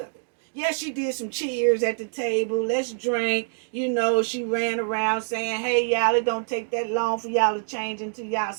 it. Yeah, she did some cheers at the table. Let's drink. You know, she ran around saying, hey, y'all, it don't take that long for y'all to change into y'all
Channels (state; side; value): silent; left; digital silence